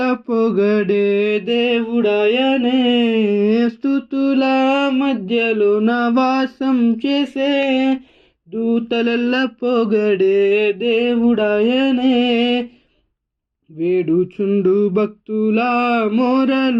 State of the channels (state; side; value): identical; both; correlation 1.00